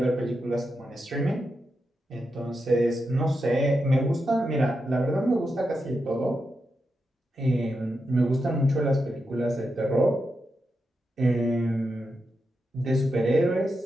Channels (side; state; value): both; normal; correlation 0.87